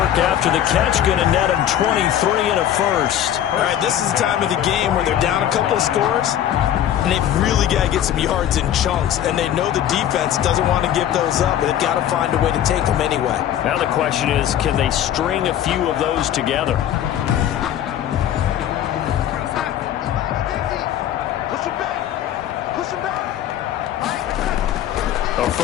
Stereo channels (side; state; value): right; quieter; 10.9 dB